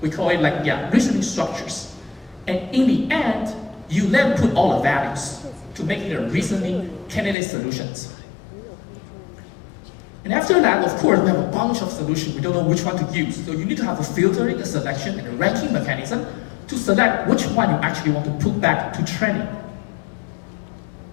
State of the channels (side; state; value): right; drops out; at 7.4 s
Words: we call it reasoning structures. And in the end, you then put all the values to make it a reasoning candidate solutions. And after that, of course, we have a bunch of solutions. We don't know which one to use. So you need to have a filtering, a selection, and a ranking mechanism to select which one you actually want to put back to training.